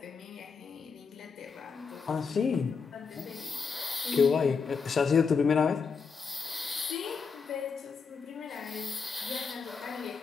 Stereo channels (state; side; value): quieter; right; 5.4 dB